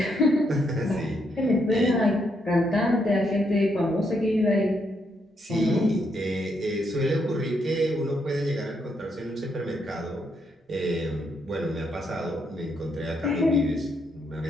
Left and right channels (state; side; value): normal; both; correlation 0.77